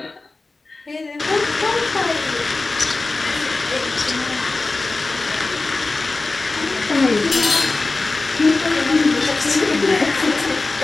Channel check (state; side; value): quieter; right; 3.4 dB